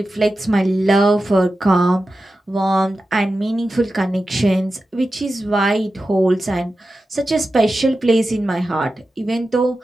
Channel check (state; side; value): normal; both; correlation 0.92